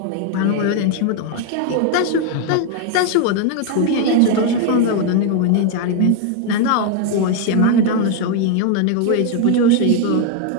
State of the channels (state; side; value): different; both; correlation 0.01